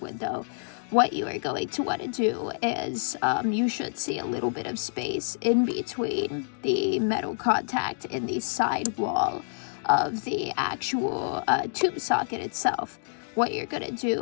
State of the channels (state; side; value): silent; right; digital silence